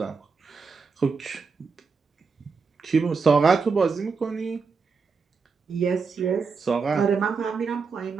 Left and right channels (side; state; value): left; quieter; 5.0 dB